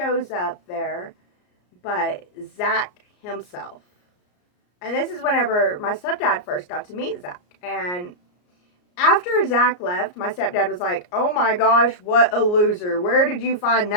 up there but Zach himself. And this is whenever my stepdad first got to meet Zach. And after Zach left, my stepdad was like, oh my gosh, what a loser. Where did you find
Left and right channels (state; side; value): late; right; 34 ms